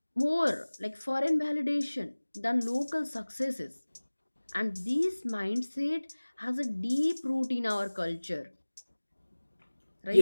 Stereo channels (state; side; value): inverted; both; correlation -1.00